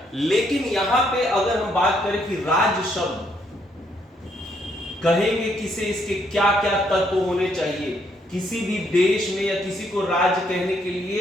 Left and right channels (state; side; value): normal; both; correlation 0.72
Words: लेकिन यहां पे अगर हम बात करें कि राज्य शब्द कहेंगे किसे, इसके क्या क्या तत्व होने चाहिए, किसी भी देश में या किसी को राज्य कहने के